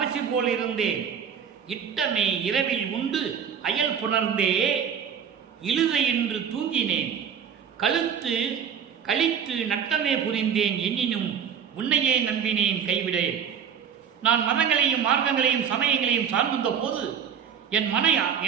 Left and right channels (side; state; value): left; quieter; 7.8 dB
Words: போல் இருந்தேன். இட்டமே இரவில் உண்டு அயல் புணர்ந்தே இழுதை என்று தூங்கினேன். கழுத்து கழித்து நட்டமே புரிந்தேன் எண்ணினும் உன்னையே நம்பினேன் கைவிடேன். நான் மதங்களையும் மார்க்கங்களையும் சமயங்களையும் சார்ந்திருந்த போது என்